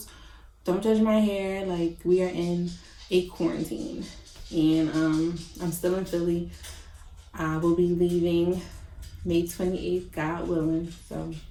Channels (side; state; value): both; identical; correlation 1.00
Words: don't judge my hair. Like, we are in a quarantine. And I'm still in Philly. I will be leaving May 28th, God willing. So